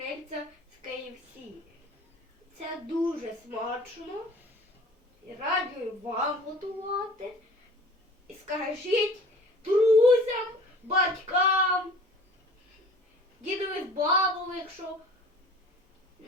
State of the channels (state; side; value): normal; both; correlation 0.45